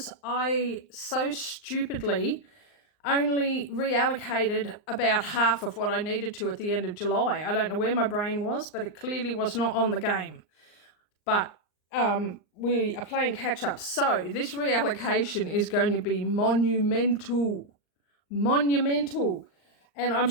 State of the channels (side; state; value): right; late; 39 ms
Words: I so stupidly only reallocated about half of what I needed to at the end of July. I don't know where my brain was, but it clearly was not on the game. But we are playing catch up. So this reallocation is going to be monumental. And I'm